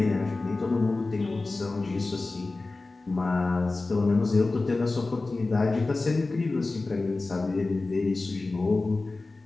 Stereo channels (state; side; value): quieter; right; 3.4 dB